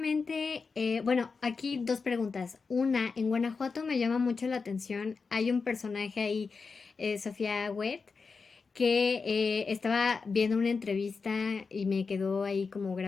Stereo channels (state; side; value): quieter; right; 4.8 dB